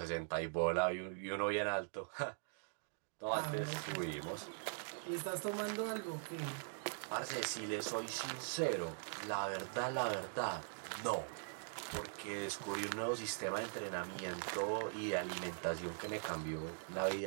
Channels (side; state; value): left; silent; digital silence